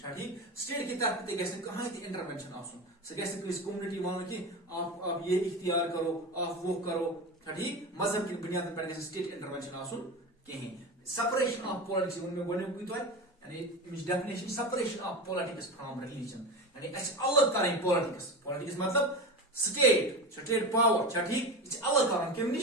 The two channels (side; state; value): both; normal; correlation 0.24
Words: ٹھیک state کی طرف تے گژھِ کہاں تے انٹرونشن آسن سہ گژھِ کس کمیونٹی ون کہ آپ یہ اختیار کرو آپ وہ کرو چھا ٹھیک مذہب کی بنیاد پر گژھِ state intervention آسن کہیں separation of politics ون میں گۄڈنیُکُے تۄہہِ یعنی امچ definition separation of politics from religion یعنی اس الگ کریں politics مطلب state power چھا ٹھیک یہ الگ کرن کم